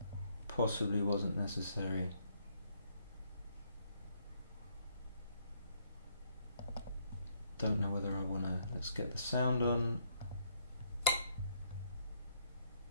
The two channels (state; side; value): inverted; both; correlation -0.70